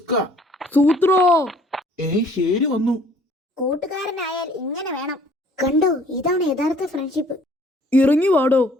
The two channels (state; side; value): normal; both; correlation 0.57